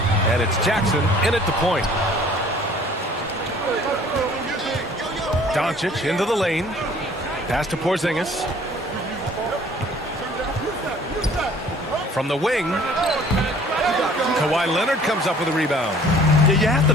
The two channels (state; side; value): normal; both; correlation 0.53